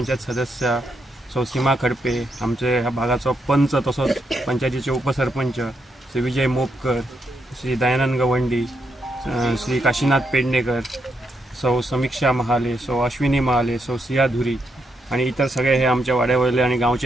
सदस्य सौ सीमा खडपे, आमचे ह्या भागाचो पंच तसोच पंचायतीचे उपसरपंच श्री विजय मोपकर, श्री दयानंद गवंडी, श्री काशीनाथ पेडणेकर, सौ समीक्षा महाले, सौ अश्विनी महाले, सौ सिया धुरी आणि इतर सगळे हे आमच्या वाड्यावयले आणि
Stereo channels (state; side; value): normal; both; correlation 0.80